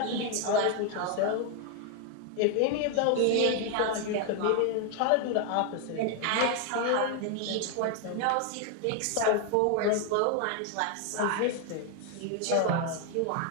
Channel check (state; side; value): different; both; correlation 0.01